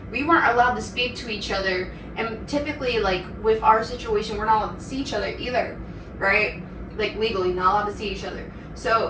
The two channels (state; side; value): identical; both; correlation 1.00